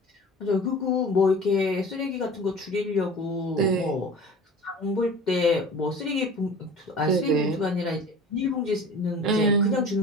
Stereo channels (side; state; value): both; normal; correlation 0.40